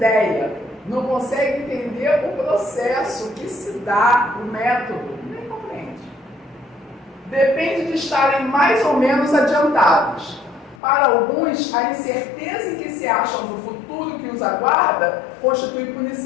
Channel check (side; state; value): right; drops out; at 10.8 s